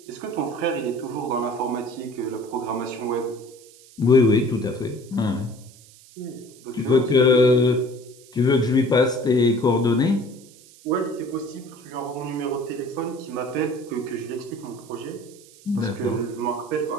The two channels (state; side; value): noise; right; hiss, 24 dB below the sound